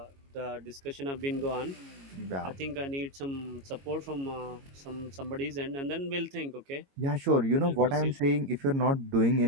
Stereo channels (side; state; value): left; late; 22 ms